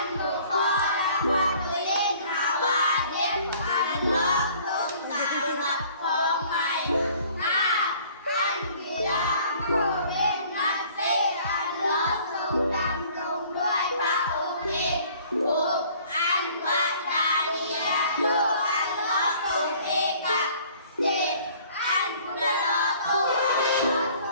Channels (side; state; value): both; inverted; correlation -0.54